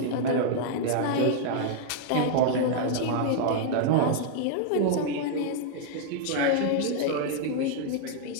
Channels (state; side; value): different; both; correlation -0.01